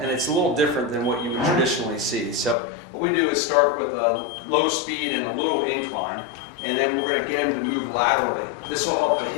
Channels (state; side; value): drops out; right; at 2.6 s